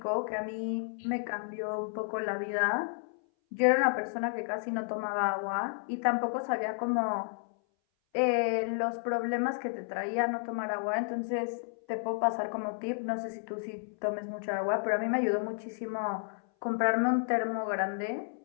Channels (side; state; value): right; silent; 57 dB below the other